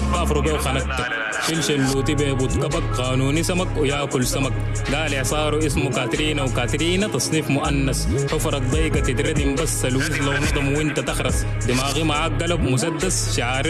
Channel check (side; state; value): both; identical; correlation 1.00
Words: كافرو بيه وخنقتك. شلش اللوتي بيبوت كبك قانوني سمك وياكل سمك. قال اعصاره اسمه كاترينا وكاترينا تصنيف مؤنث. حفرك ضيقة تتردم بس الوز لو نضم وانت تخرس. دماغي معاك قلب مسدس شعار